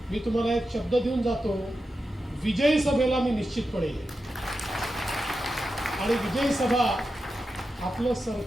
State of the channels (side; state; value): both; normal; correlation 0.90